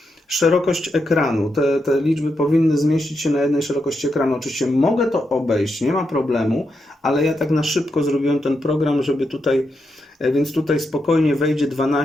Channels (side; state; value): both; normal; correlation 0.84